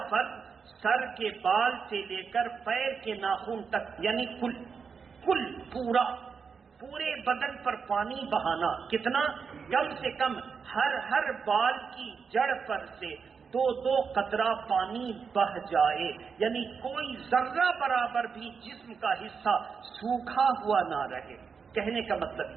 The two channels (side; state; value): left; quieter; 5.8 dB